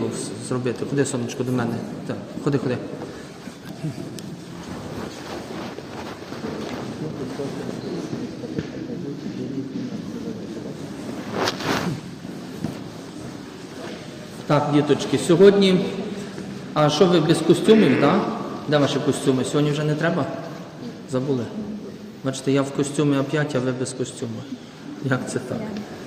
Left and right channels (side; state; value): both; identical; correlation 1.00